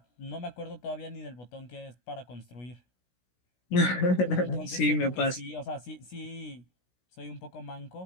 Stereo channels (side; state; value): right; late; 16 ms